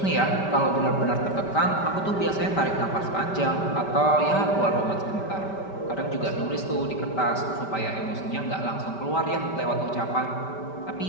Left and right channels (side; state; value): right; late; 5.1 ms